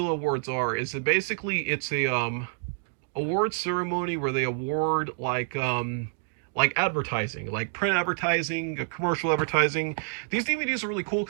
Awards are is that basically it's a award ceremony where they award like advertising, like print advertising, commercial advertising. These DVDs are really cool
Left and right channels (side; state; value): left; silent; digital silence